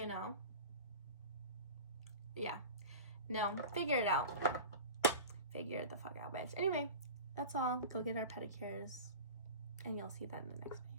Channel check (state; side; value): inverted; both; correlation -0.34